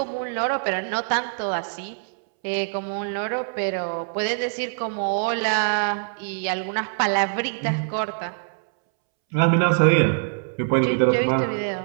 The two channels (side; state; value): left; silent; 63 dB below the other